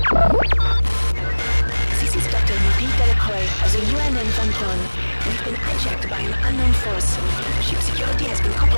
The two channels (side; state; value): both; inverted; correlation -1.00